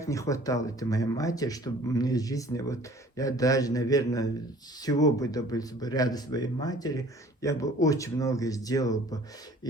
не хватало это моей матери, чтобы мне в жизни, вот я даже, наверное, всего бы добился бы рядом своей матери, я бы очень много сделал бы.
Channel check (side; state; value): both; normal; correlation 0.51